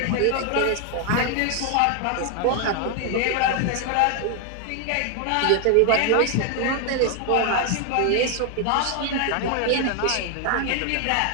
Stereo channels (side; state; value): both; different; correlation 0.00